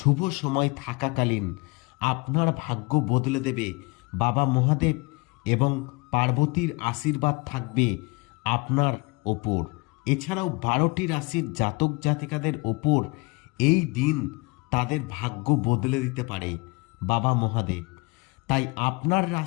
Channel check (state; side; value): quieter; right; 27.5 dB